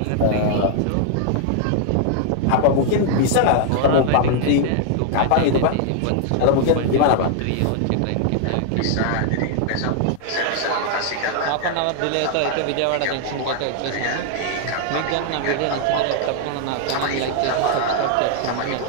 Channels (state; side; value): different; both; correlation 0.00